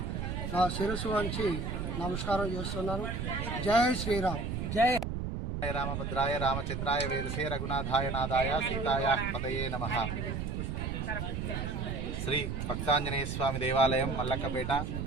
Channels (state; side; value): noise; right; rumble, 3 dB below the sound